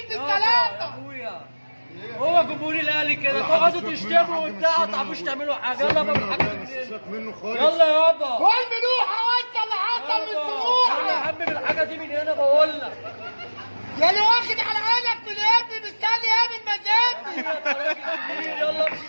يا بالثلاثه. اخويا هو جمهور الاهلي كده تقعدوا تشتموا وبتاع ما تعرفوش تعملوا حاجه. يلا بقى بالحاجه منه خالص. يلا يابا. كل ملوحه وانت اللي حصل من يلا يا سموحه. عم بالحاجه دي من هنا بقول لك. يا اللي واخد على عينك من ابني مستني ايه من مزاجي. انت راجل كبير. يلا امشي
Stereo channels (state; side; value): inverted; both; correlation -1.00